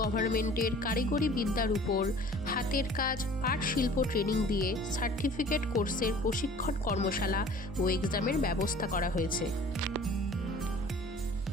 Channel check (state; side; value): normal; both; correlation 0.47